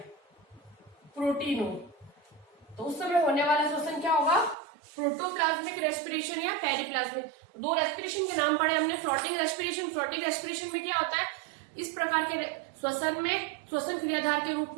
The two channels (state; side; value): drops out; left; at 4.5 s